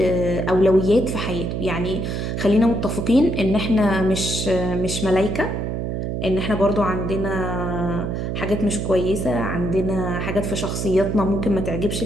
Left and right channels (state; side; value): noise; right; hum, 2 dB below the sound